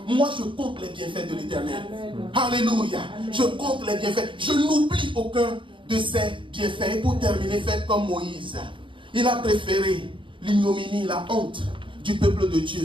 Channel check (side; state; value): left; late; 0.24 ms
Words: Moi, je compte les bienfaits de l'Éternel. Alléluia. Je compte les bienfaits. Je n'oublie aucun de ses bienfaits. Et pour terminer, faites comme Moïse. Il a préféré l'ignominie, la honte du peuple de